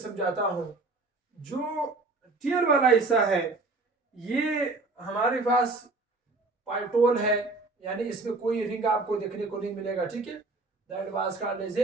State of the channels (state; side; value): quieter; left; 3.4 dB